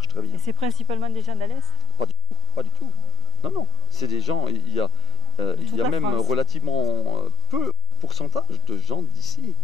très bien. Et c'est principalement des gens d'Alès? Pas du tout. Non, c'est des gens, il y a même relativement peu pourcentage de gens d'ici.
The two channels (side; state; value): both; normal; correlation 0.16